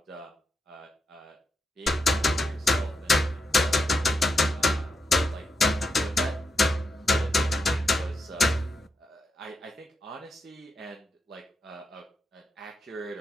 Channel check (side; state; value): both; normal; correlation 0.84